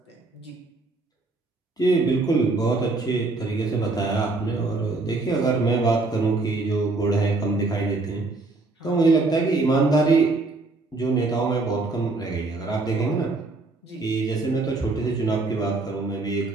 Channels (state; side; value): quieter; left; 3.4 dB